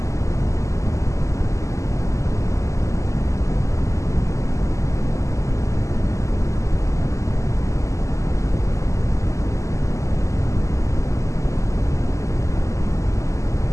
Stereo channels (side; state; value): right; late; 0.15 ms